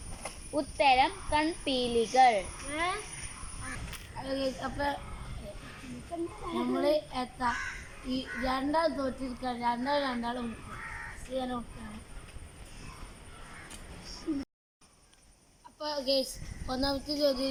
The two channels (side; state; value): both; identical; correlation 1.00